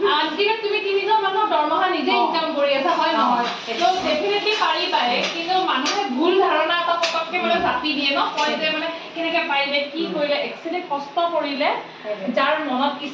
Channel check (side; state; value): both; identical; correlation 1.00